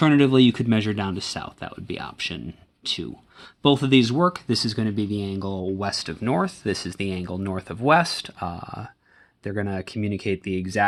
you could measure down to south. That would be option 2. Both of these work. This is going to be the angle west of north. This is the angle north of west. They're going to communicate the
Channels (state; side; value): identical; both; correlation 1.00